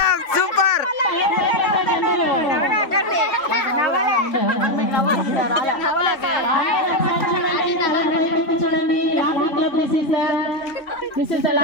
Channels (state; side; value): late; right; 3.6 ms